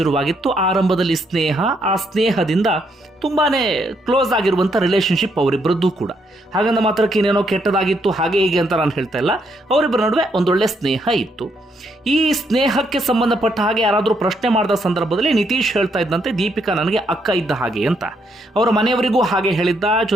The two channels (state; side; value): normal; both; correlation 0.75